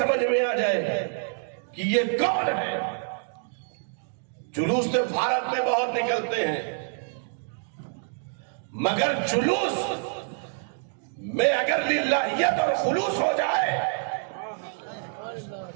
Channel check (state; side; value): silent; left; digital silence